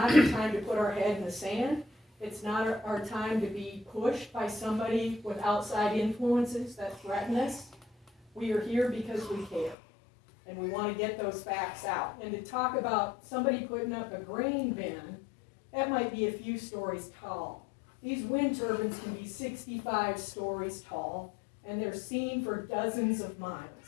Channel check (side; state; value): right; drops out; at 9.8 s